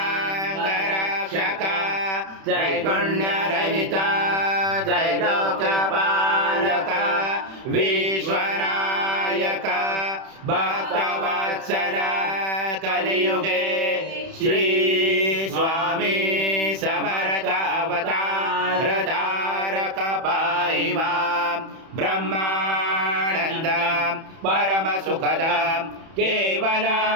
त्रैगुण्यरहित त्रैलोक्यपालक विश्वनायक भक्तवत्सल कलियुगे श्री स्वामी समर्थ अवतार धारक पाहि मां ब्रह्मानंद परम सुखद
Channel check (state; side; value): late; left; 31 ms